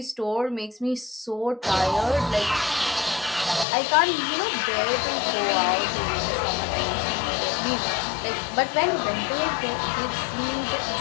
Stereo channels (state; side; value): drops out; right; at 3.7 s